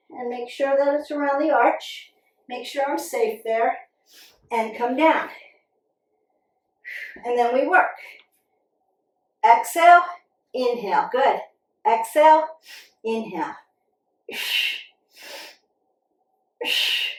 and make sure that it's around the arch. Make sure I'm safe there, and come down. And then we work. Exhale, inhale. Good. Exhale, inhale.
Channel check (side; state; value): both; identical; correlation 1.00